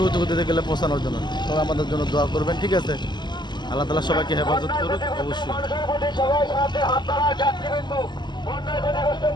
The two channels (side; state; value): right; late; 0.21 ms